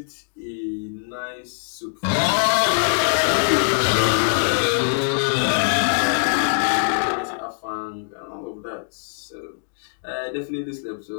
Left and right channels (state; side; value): silent; right; digital silence